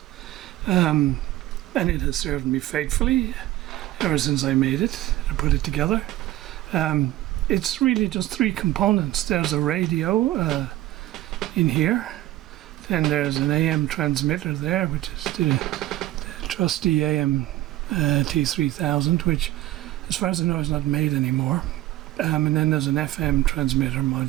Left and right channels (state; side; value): quieter; left; 15.2 dB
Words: and it has served me faithfully ever since I made it and put it together. It's really just three components. There's a radio in here, then there's an AM transmitter there, which is the trusty AM T3000, which as far as I know is not made anymore, and then there's an FM transmitter